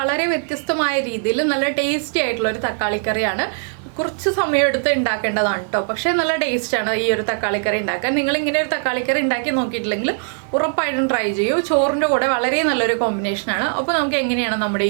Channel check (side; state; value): left; silent; 58 dB below the other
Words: വ്യത്യസ്തമായ രീതിയിൽ നല്ല ടേസ്റ്റി ആയിട്ടുള്ള ഒരു തക്കാളി കറിയാണ്. കുറച്ച് സമയമെടുത്ത് ഉണ്ടാക്കേണ്ടതാണ് കേട്ടോ, പക്ഷേ നല്ല ടേസ്റ്റാണ് ഈ ഒരു തക്കാളി കറി ഉണ്ടാക്കാൻ. നിങ്ങൾ ഇങ്ങനെ ഒരു തക്കാളി കറി ഉണ്ടാക്കി നോക്കിയിട്ടില്ലെങ്കിൽ ഉറപ്പായിട്ടും ട്രൈ ചെയ്യൂ. ചോറിൻ്റെ കൂടെ വളരെ നല്ലൊരു കോമ്പിനേഷനാണ്. അപ്പോൾ നമുക്ക് എങ്ങനെയാണ് നമ്മുടെ